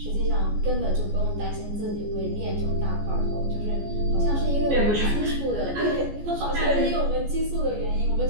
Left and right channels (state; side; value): late; left; 14 ms